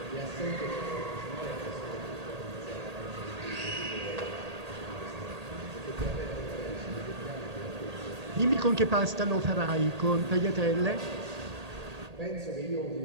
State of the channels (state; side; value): late; left; 1.8 ms